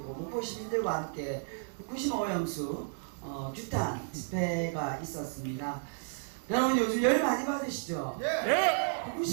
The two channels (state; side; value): silent; left; digital silence